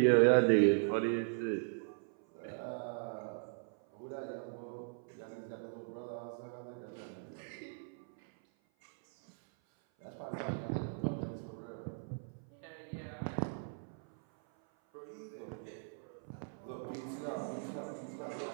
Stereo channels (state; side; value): silent; left; 52 dB below the other